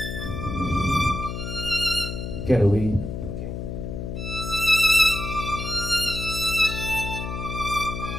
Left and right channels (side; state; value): left; noise; hum, 6 dB below the sound